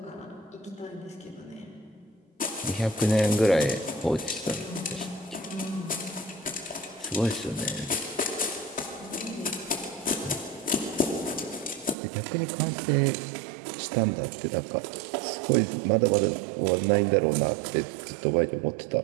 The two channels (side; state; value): left; drops out; at 12.0 s